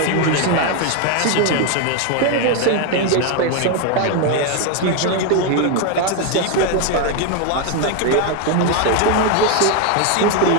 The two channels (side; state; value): both; different; correlation 0.01